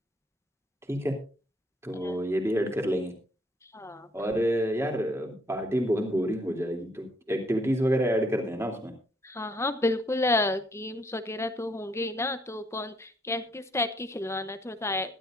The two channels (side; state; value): both; normal; correlation 0.69